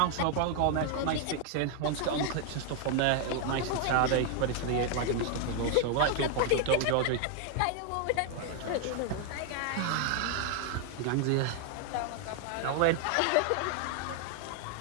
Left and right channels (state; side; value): different; both; correlation 0.00